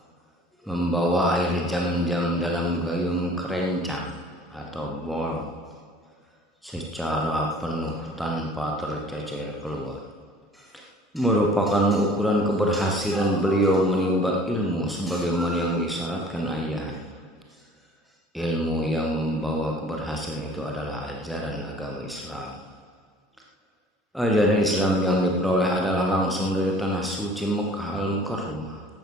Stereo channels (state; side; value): normal; both; correlation 0.49